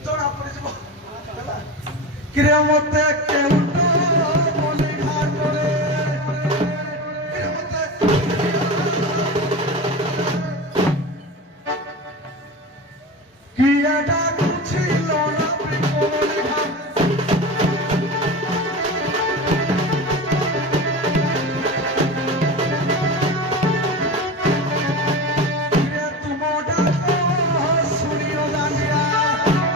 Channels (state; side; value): normal; both; correlation 0.27